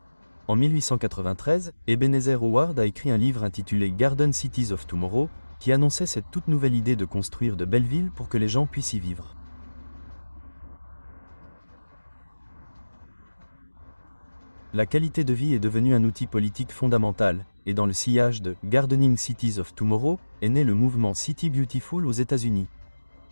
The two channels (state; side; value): inverted; both; correlation -1.00